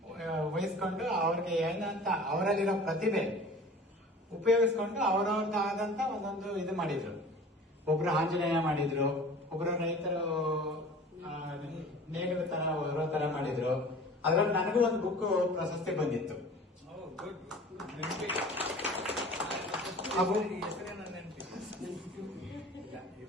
ವಹಿಸ್ಕೊಂಡು ಅವ್ರಿಗೆ ಏನಂತ ಅವರಲ್ಲಿರೋ ಪ್ರತಿಭೆ ಉಪಯೋಗಿಸ್ಕೊಂಡು ಅವ್ರವ್ರದ್ದಾದಂತ ಒಂದೊಂದು ಇದು ಮಾಡಿದ್ರು. ಒಬ್ರು ಆಂಜನೇಯ ಮಾಡಿದ್ರು, ಒಬ್ರು ರೈತರು ನೇಗಿಲ ತರ ಹೊರೋ ತರ ಮಾಡಿದ್ರು. ಅದ್ರಲ್ಲಿ ನನಗೂ ಒಂದು ಬುಕ್ ಪ್ರಶಸ್ತಿ ಬಂದಿತ್ತು.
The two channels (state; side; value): normal; both; correlation 0.42